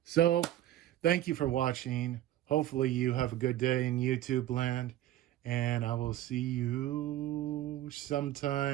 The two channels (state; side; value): quieter; left; 13.6 dB